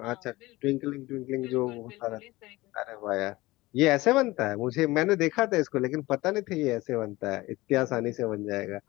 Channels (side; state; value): right; quieter; 19.7 dB